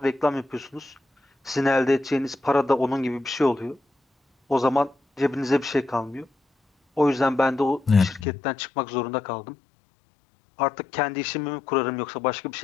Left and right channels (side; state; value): right; drops out; at 8.2 s